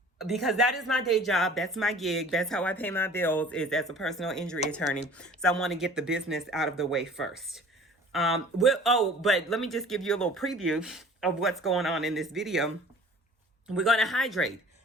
because that is my day job. That's my gig. That's how I pay my bills, is as a personal injury attorney. So I want to get the business out of the way first. But let me just give you a little preview of what's going on in this video. We're going to hydrate.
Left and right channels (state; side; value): normal; both; correlation 0.47